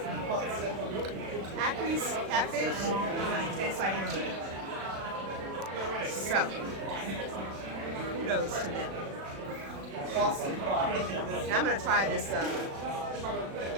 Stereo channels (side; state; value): left; late; 36 ms